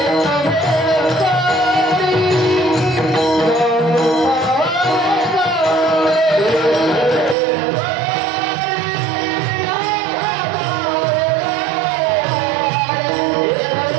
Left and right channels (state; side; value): drops out; left; at 7.4 s